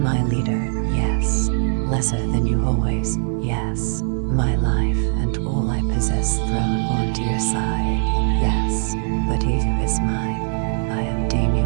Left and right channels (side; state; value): left; silent; digital silence